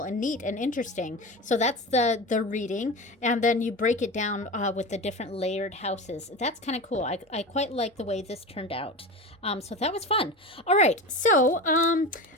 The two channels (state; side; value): normal; both; correlation 0.28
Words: and neat and interesting. So that's the reading, and then you break it down with the different layered houses. That's kind of cool. I quite like the way this turned out. So that was fun. All right, so